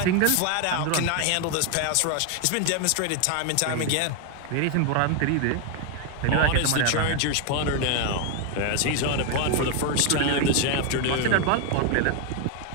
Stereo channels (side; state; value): both; different; correlation 0.01